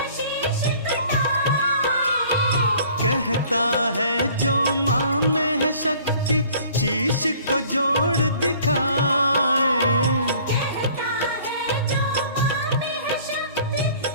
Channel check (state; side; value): inverted; both; correlation -0.53